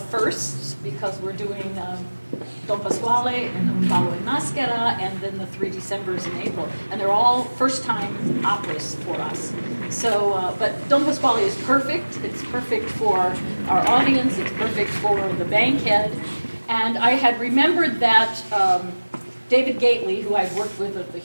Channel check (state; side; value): inverted; both; correlation -1.00